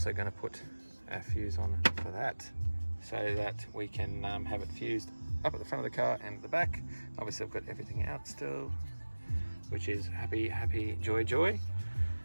going to put a fuse on for that, so that we can have it fused up at the front of the car and at the back. Obviously I've got everything out still, which is happy, happy, joy, joy.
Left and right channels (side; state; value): both; inverted; correlation -1.00